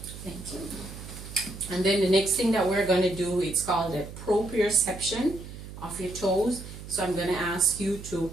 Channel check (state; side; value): noise; right; hum, 13 dB below the sound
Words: Thank you. And then the next thing that we're going to do, it's called a proprioception of your toes. So I'm going to ask you to